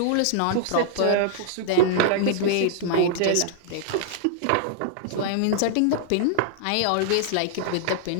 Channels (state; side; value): different; both; correlation -0.01